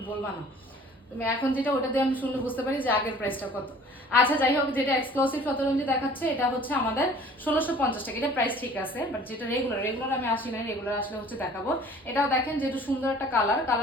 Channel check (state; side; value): normal; both; correlation 0.49